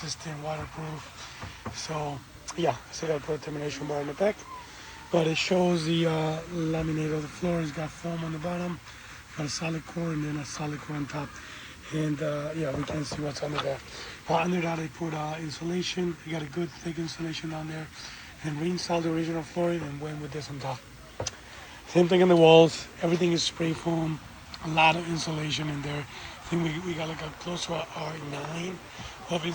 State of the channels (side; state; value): both; identical; correlation 1.00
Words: waterproof. So yeah, so I gotta put a termination bar in the back. But it shows the laminate of the floor. It's got foam on the bottom, got a solid core, and then a solid core on top. And yeah, we can see what's under there. Under that I put insulation. I got a good thick insulation on there, and reinstalled the original flooring and went with this on top. Same thing on the walls. Everything is spray foam. A lot of insulation in there. I think we got like a close to a R9 of